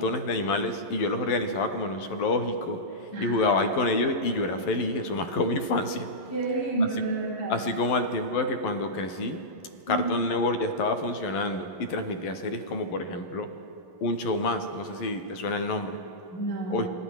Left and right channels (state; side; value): late; right; 11 ms